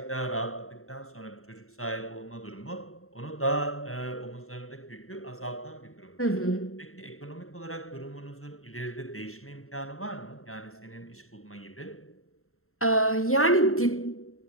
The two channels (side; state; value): right; late; 0.62 ms